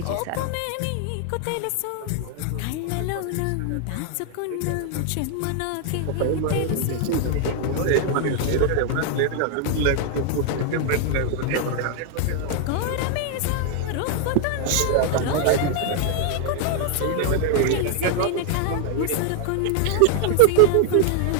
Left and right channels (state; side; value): different; both; correlation 0.00